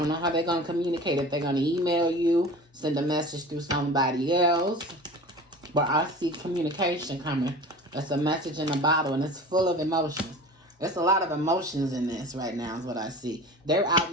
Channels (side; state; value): both; normal; correlation 0.38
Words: know how they're going to communicate. If they're going to email you, send a message through somebody else. But I see communication coming. It's a message in a bottle, and it's full of emotions. There's a lot of emotions in this right now is what I see. They're out